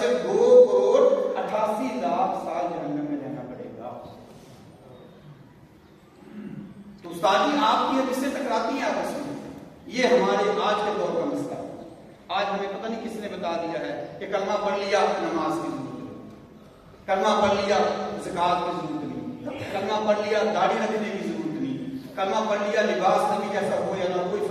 2,88,00,000 سال جہنم میں رہنا پڑے گا۔ تو استاد جی آپ کی حدیثیں ٹکراتی ہیں آپس میں، یہ ہمارے آج کے دور کا مسئلہ ہے۔ آج ہمیں پتہ نہیں کس نے بتا دیا ہے کہ کلمہ پڑھ لیا نماز کی ضرورت نہیں، کلمہ پڑھ لیا زکات کی ضرورت نہیں، کلمہ پڑھ لیا داڑھی رکھنے کی ضرورت نہیں، کلمہ پڑھ لیا لباس نبی جیسا ہو یا نہ کوئی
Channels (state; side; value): identical; both; correlation 1.00